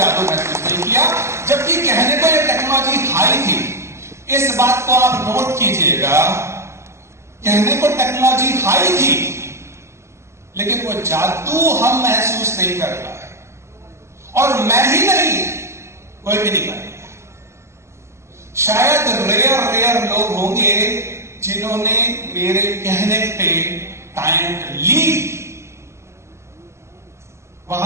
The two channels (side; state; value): left; late; 0.13 ms